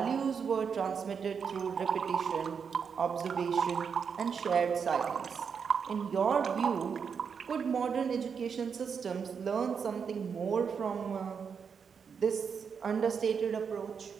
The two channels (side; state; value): left; quieter; 6.4 dB